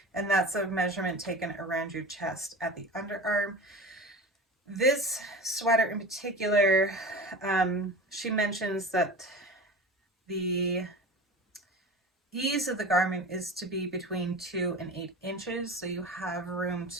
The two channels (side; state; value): both; normal; correlation 0.33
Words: And that's a measurement taken around your chest at the underarm. This sweater in particular, she mentions that the ease of the garment is to be between 2 and 8 inches, so you have room